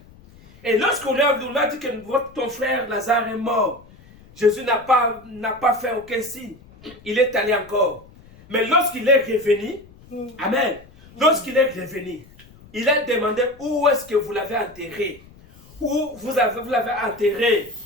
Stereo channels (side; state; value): left; noise; rumble, 24 dB below the sound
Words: Et lorsqu'on a dit que ton frère Lazare est mort, Jésus n'a pas fait aucun signe. Il est allé encore. Mais lorsqu'il est revenu, amen, lorsqu'il est revenu, il a demandé où est-ce que vous l'avez enterré. Où vous l'avez enterré.